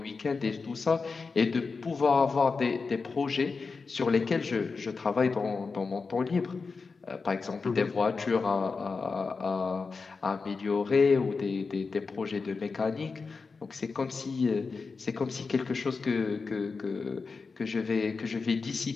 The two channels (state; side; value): quieter; right; 4.6 dB